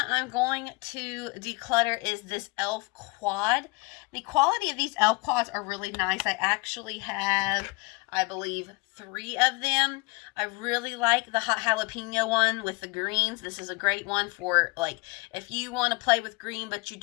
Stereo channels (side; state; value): right; quieter; 26.2 dB